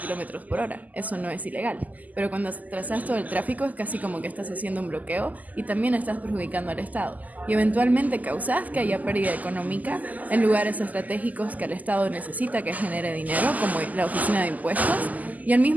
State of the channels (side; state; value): left; late; 0.079 ms